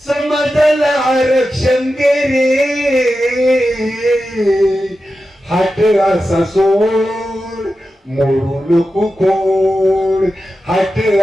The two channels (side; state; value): both; normal; correlation 0.91